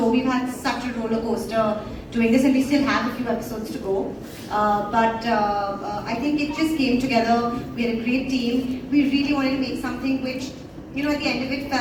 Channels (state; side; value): identical; both; correlation 1.00